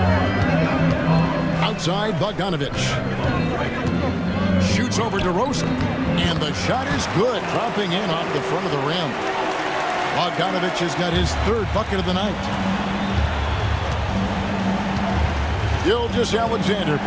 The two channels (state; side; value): identical; both; correlation 1.00